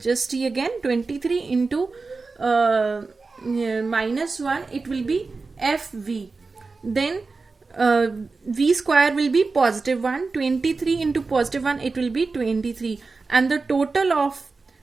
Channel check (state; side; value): quieter; left; 4.1 dB